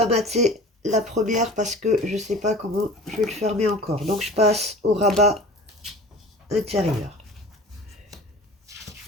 mater la première parce que je ne sais pas comment je vais le fermer encore. Donc, je passe au rabat intérieur.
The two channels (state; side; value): normal; both; correlation 0.40